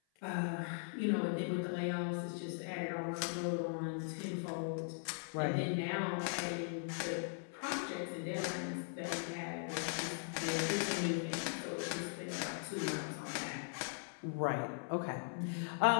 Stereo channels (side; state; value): right; silent; 51 dB below the other